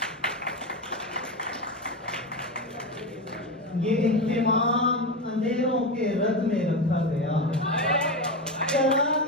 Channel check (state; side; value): normal; both; correlation 0.18